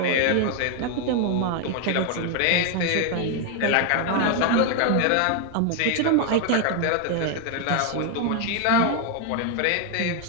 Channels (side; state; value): both; different; correlation 0.01